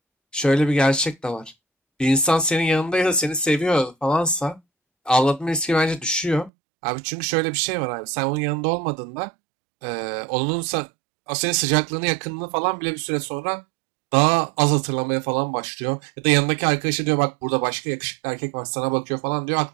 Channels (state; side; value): drops out; left; at 6.5 s